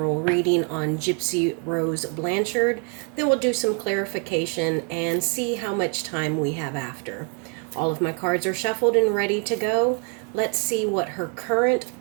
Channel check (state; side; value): quieter; left; 36.8 dB